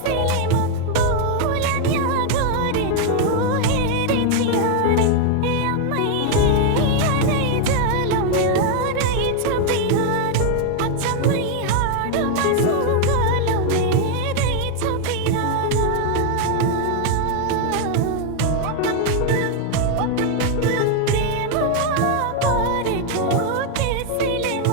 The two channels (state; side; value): different; both; correlation 0.01